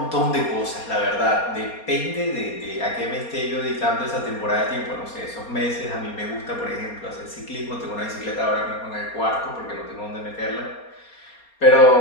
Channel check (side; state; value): right; late; 4.3 ms